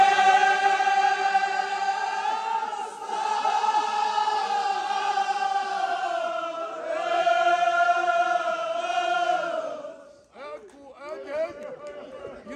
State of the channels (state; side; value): identical; both; correlation 1.00